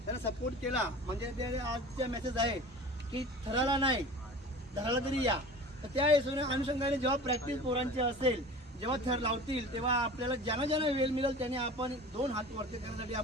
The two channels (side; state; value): both; normal; correlation 0.38